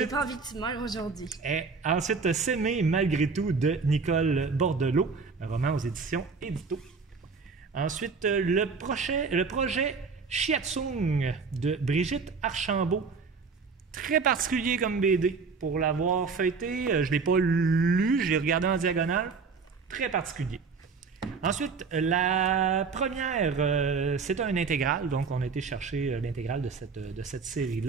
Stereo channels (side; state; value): left; quieter; 5.0 dB